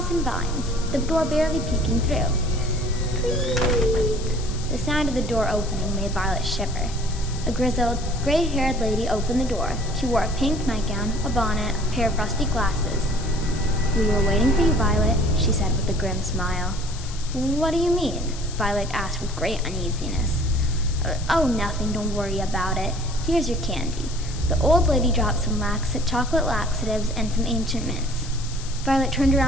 and vines, the door barely peeking through. Creak! The sound of the door opening made Violet shiver. A grizzled, gray-haired lady opened the door. She wore a pink nightgown, a bonnet, a pair of rusty glasses. "We were waiting for you, Violet," she said with a grim smile. "What do you mean?" Violet asked with great uneasiness. "Oh, nothing, don't worry about it. Here's your candy." The old lady dropped some chocolate laxatives and some ancient mints. Violet turned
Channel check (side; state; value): left; noise; hiss, 14 dB below the sound